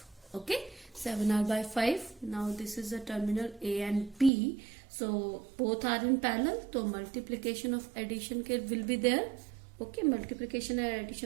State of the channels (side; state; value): left; drops out; at 4.3 s